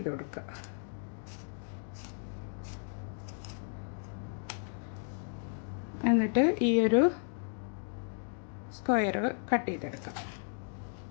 കൊടുക്കുക. എന്നിട്ട് ഈ ഒരു സ്ക്വയർ കട്ട് ചെയ്തെടുക്കാം.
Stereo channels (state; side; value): silent; right; digital silence